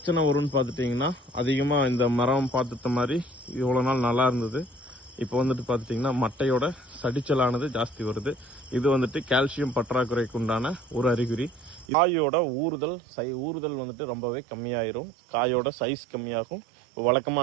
வரும்னு பார்த்துட்டிங்கன்னா, அதிகமாக இந்த மரம் பார்த்துட்ட மாதிரி இவ்வளோ நாள் நல்லா இருந்தது. இப்போ வந்துட்டு பார்த்துட்டிங்கன்னா மட்டையோட சடிச்சலானது ஜாஸ்தி வருது. இது வந்துட்டு கால்சியம் பற்றாக்குறைக்கு உண்டான ஒரு அறிகுறி. காயோட ஊறுதல் வந்துட்டு ரொம்பவே கம்மியாயிரும். காயோட சைஸ் கம்மியாகும்.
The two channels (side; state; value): left; drops out; at 11.9 s